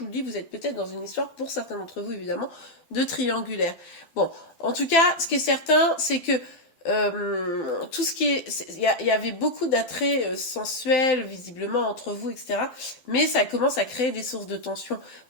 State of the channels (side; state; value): right; late; 12 ms